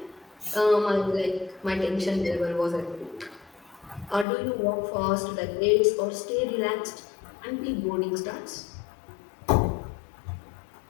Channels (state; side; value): drops out; right; at 4.2 s